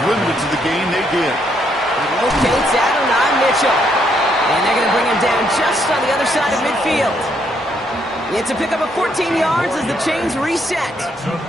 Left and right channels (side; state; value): both; normal; correlation 0.73